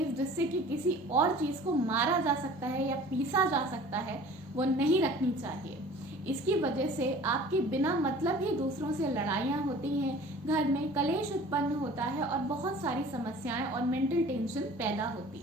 जिससे कि किसी और चीज को मारा जा सकता है या पीसा जा सकता है, वो नहीं रखनी चाहिए। इसकी वजह से आपकी बिना मतलब ही दूसरों से लड़ाइयाँ होती हैं, घर में कलेश उत्पन्न होता है और बहुत सारी समस्याएं और मेंटल टेंशन पैदा होती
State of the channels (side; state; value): both; normal; correlation 0.46